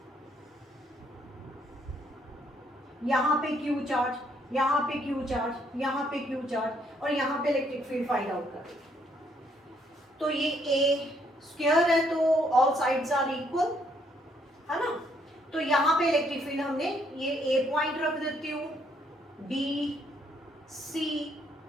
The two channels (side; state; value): both; normal; correlation 0.70